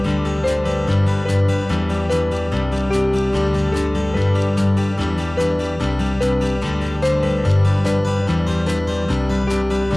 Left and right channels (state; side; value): noise; right; hum, 20 dB below the sound